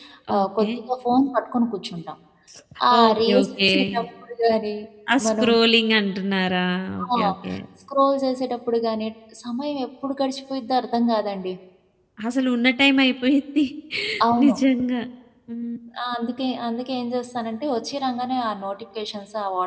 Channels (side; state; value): both; identical; correlation 1.00